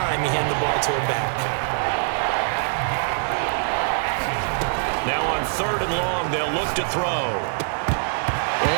you hand the ball to him back. Now on third and long, they'll look to throw.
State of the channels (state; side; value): silent; left; 63 dB below the other